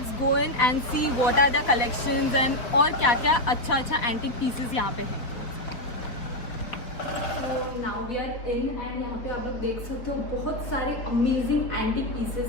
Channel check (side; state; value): right; late; 4.4 ms